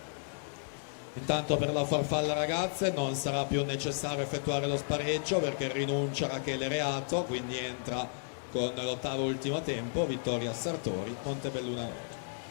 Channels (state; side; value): silent; right; digital silence